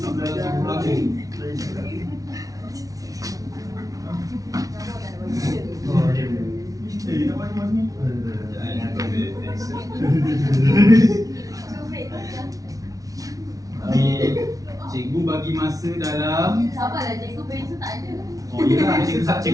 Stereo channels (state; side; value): late; left; 0.17 ms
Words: belajar. Oh, dia. Nak mana ni? Jangan ambil pensel. Cikgu bagi masa dalam Sabarlah, cikgu pensel tak ada. Oh iyalah,